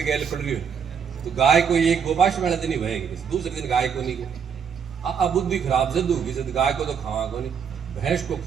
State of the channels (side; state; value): left; quieter; 7.0 dB